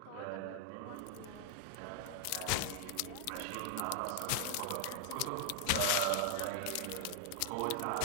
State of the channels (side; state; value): both; different; correlation 0.00